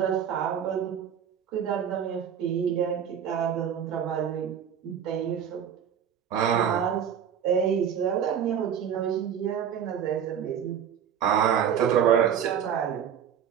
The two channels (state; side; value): quieter; left; 8.5 dB